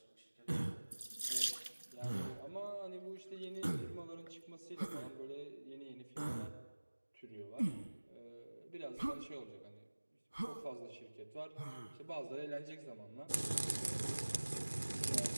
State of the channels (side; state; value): both; inverted; correlation -1.00